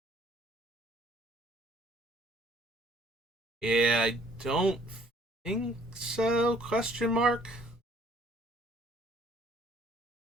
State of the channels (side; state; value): both; normal; correlation 0.59